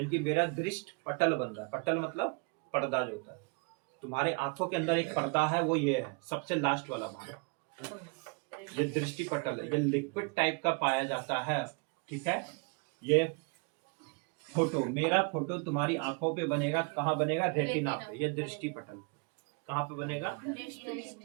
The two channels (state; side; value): quieter; left; 34.1 dB